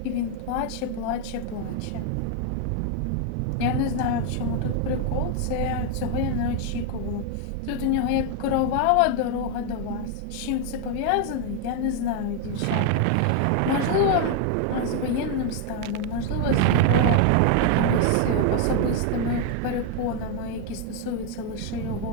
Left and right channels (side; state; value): both; different; correlation 0.01